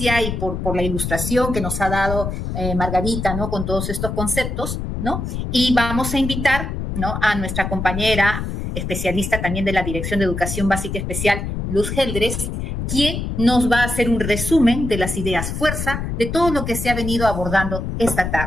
y por la ilustración que nos ha dado Margarita, ¿no?, con todos estos conceptos, ¿no? Y vamos a invitar, ¿no?, a nuestra compañera especialista también de la Dirección de Educación Básica Especial, Luz Geldres, quien nos va a hacer un resumen de las ideas fuerza de todo lo que se ha venido abordando esta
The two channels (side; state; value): left; noise; rumble, 4 dB below the sound